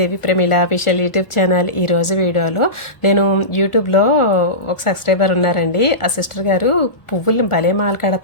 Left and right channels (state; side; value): late; right; 1.4 ms